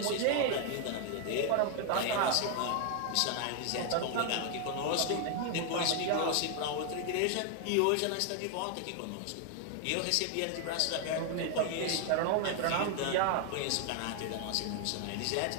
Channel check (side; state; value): both; different; correlation 0.00